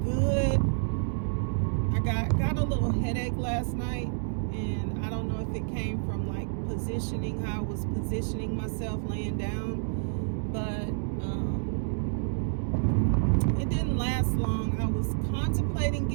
Good. I got a little headache last night, and I don't know if it came from like positioning, how I was positioning myself laying down, but it didn't last long. I was contemplating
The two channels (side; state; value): left; silent; digital silence